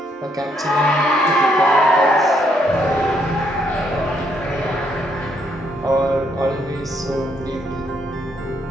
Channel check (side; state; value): both; normal; correlation 0.73